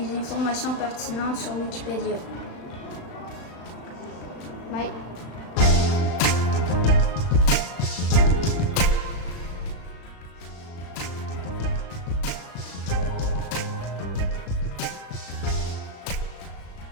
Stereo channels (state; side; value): late; right; 35 ms